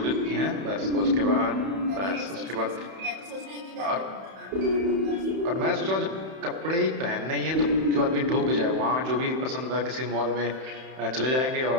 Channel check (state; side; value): late; left; 31 ms